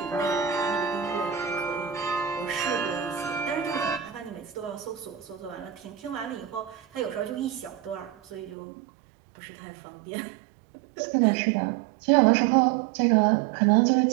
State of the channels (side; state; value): left; drops out; at 8.6 s